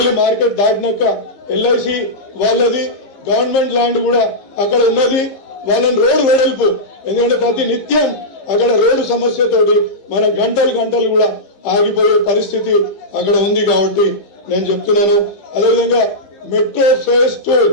మార్కెట్ దాటినాక ఎల్ఐసి వాళ్ళది గవర్నమెంట్ ల్యాండ్ కూడా అక్కడ ఉన్నది. వాళ్ళని రోడ్డు వెడల్పు, ఎందుకంటే ప్రతి నిత్యం అక్కడ రోడ్డు సమస్యతోటి మన గంటలు కూడా ఆగిపోయే పరిస్థితి అక్కడ ఉంది. కాబట్టి నేను చెప్తున్నాను. అదేవిధంగా మెట్రో ఫేజ్ 2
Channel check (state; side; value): late; right; 15 ms